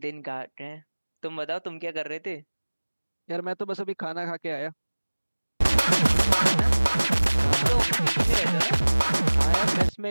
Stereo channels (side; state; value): both; inverted; correlation -1.00